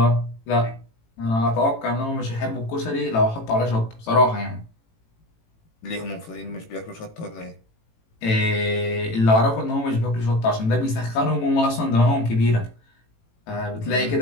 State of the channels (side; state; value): right; late; 18 ms